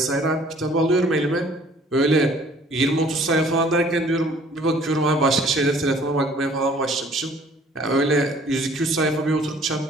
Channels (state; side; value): normal; both; correlation 0.55